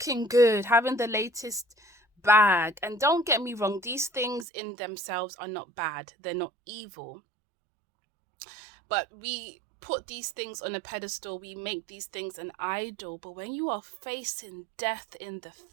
good, having the latest bag. And don't get me wrong, these things in themselves are not bad. They're not evil. But we put these things on a pedestal. We make these things an idol. But when you are facing death in the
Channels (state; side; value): drops out; left; at 4.5 s